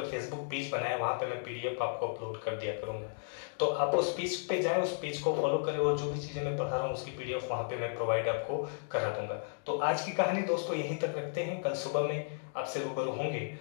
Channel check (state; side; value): silent; right; digital silence